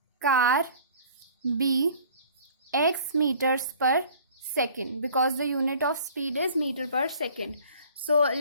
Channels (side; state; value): both; inverted; correlation -0.50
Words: car be x meters per second, because the unit of speed is meter per second. So